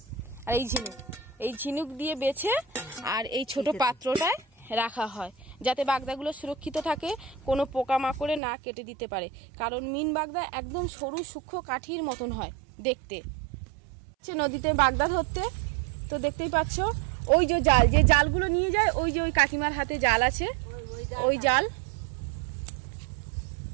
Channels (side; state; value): left; drops out; at 8.4 s